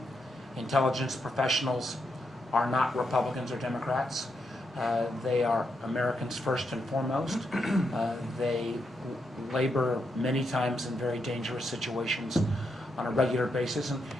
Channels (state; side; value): normal; both; correlation 0.81